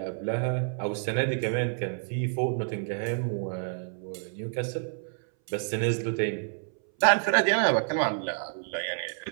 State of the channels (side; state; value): left; silent; 59 dB below the other